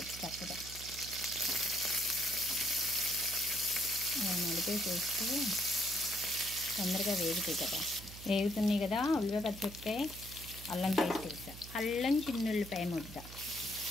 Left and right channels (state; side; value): noise; right; hum, 14 dB below the sound